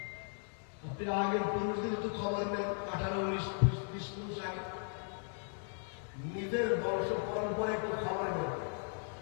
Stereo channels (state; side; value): silent; right; 53 dB below the other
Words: আপনি আগের পুরুষদের একটু খবর নেন, 18-19-20 পুরুষ আগে নিজের বংশ পরম্পরা একটু খবর নেন।